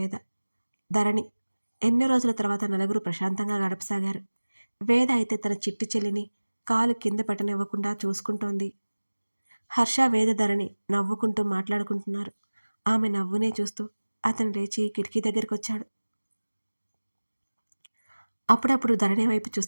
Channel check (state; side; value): inverted; both; correlation -1.00